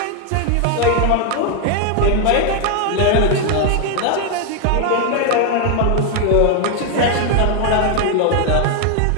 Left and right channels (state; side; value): different; both; correlation 0.01